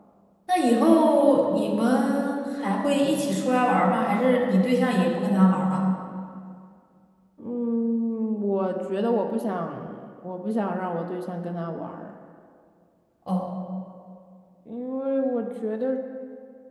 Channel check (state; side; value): identical; both; correlation 1.00